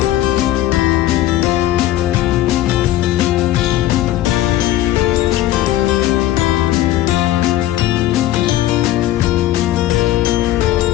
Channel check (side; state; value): right; quieter; 14.1 dB